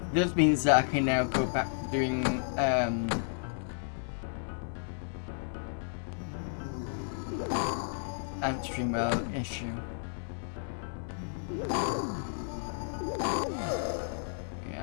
This means that I can now go back to doing AntStream issue.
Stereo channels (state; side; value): silent; right; digital silence